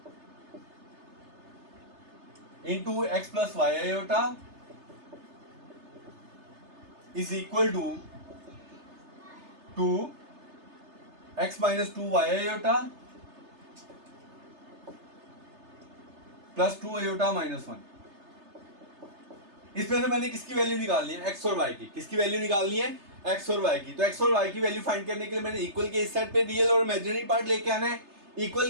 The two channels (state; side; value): late; left; 3.3 ms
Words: into x plus y iota is equal to 2 x minus 2 y iota plus 2 iota minus 1। इसमें से मैंने किसकी वैल्यू निकालनी है, एक्स और वाई की। किसकी वैल्यू निकालनी है, एक्स और वाई की। तो एक्स और वाई की वैल्यू फाइंड करने के लिए मैंने इक्वल के इस साइड पे रियल और इमेजिनरी पार्ट लेके आना है, इक्वल